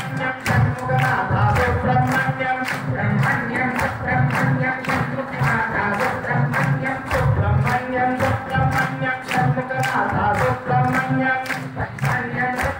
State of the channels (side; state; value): both; identical; correlation 1.00